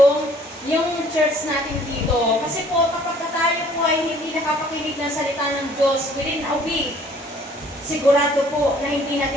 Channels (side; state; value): both; normal; correlation 0.57